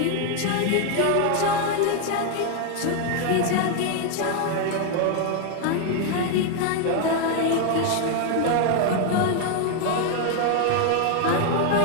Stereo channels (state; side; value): different; both; correlation 0.01